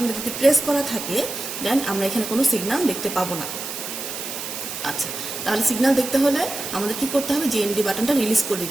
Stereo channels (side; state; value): right; noise; hiss, 7 dB below the sound